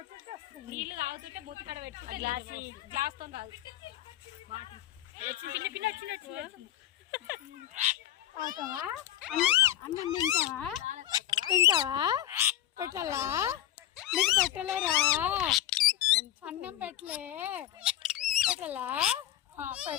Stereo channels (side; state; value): right; quieter; 12.9 dB